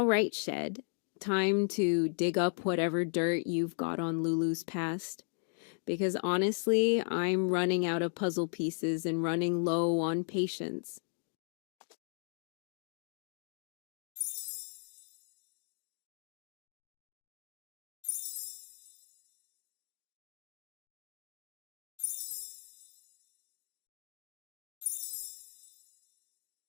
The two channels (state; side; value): silent; right; 54 dB below the other